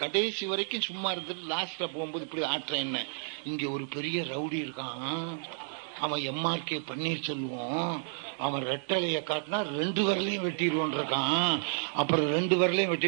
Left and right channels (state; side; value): silent; left; digital silence